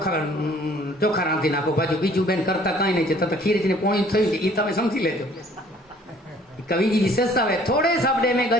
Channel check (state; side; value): normal; both; correlation 0.56